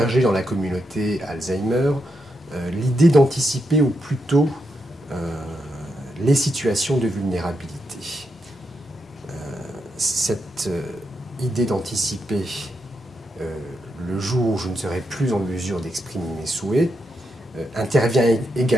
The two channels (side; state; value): both; normal; correlation 0.83